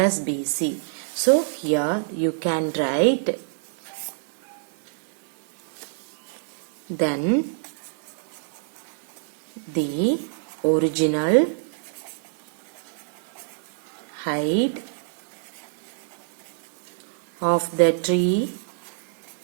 BC. So, here you can write, then the original height of the tree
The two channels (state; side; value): silent; left; digital silence